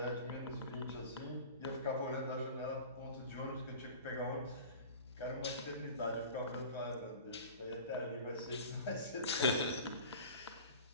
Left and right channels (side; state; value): both; inverted; correlation -0.39